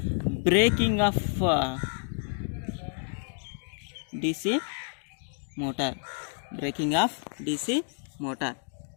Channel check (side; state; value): right; silent; 58 dB below the other